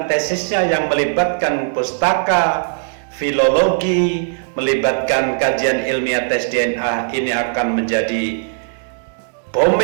tesisnya yang melibatkan pustaka, filologi, melibatkan kajian ilmiah tes DNA, ini akan menjadi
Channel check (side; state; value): left; silent; digital silence